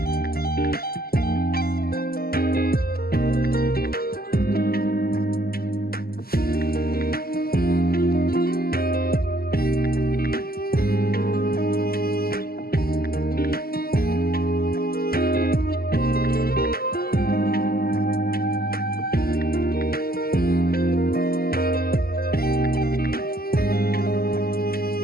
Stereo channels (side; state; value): right; late; 0.44 ms